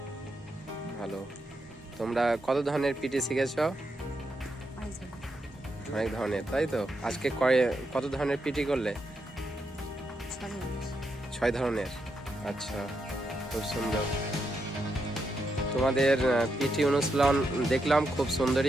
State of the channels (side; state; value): both; normal; correlation 0.83